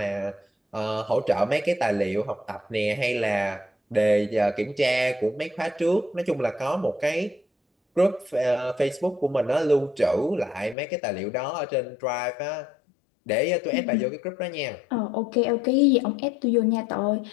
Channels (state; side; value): drops out; right; at 10.8 s